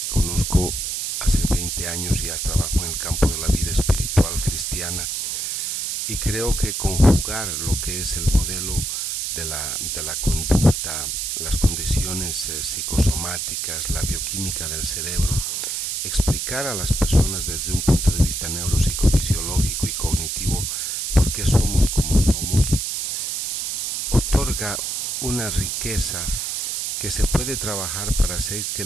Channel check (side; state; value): right; noise; hiss, 2 dB below the sound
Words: conozco hace 20 años ya trabajo en el campo de la vida espiritual cristiana, y creo que conjugar lo que es el modelo de la conducta, las condiciones psicosomáticas, la bioquímica del cerebro, explicar a las personas desde un punto de vista neuropsicofisiológico y cognitivo por qué somos como somos, otorga una riqueza que se puede trabajar para hacer que